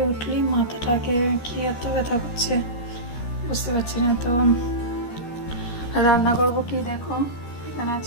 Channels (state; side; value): late; right; 13 ms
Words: উঠলেই মাথাটাকে কি এত ব্যথা করছে বুঝতে পারছি না। তো রান্না করবো কি, দেখো এখানে